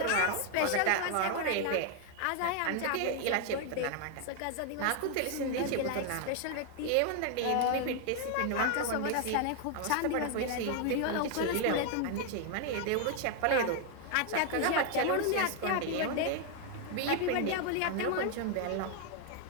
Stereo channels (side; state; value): both; different; correlation 0.00